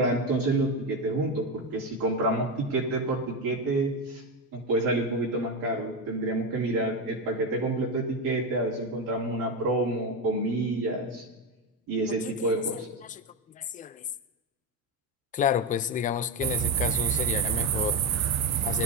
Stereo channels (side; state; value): both; normal; correlation 0.13